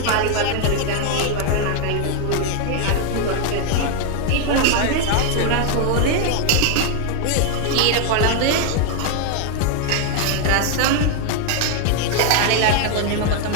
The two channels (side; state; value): both; different; correlation 0.01